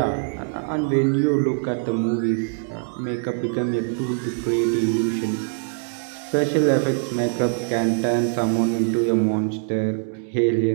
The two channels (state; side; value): silent; left; digital silence